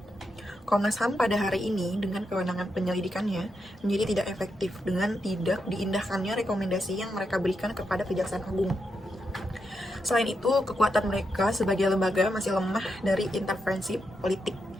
Komnas HAM pada hari ini dengan kewenangan penyelidikannya menjadi tidak efektif dengan tidak diindahkannya rekomendasi yang mereka berikan kepada Kejaksaan Agung. Selain itu, kekuatan mereka sebagai lembaga masih lemah dari intervensi politik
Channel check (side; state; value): both; normal; correlation 0.84